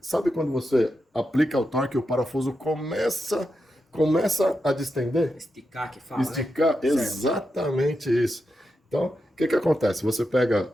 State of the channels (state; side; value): normal; both; correlation 0.87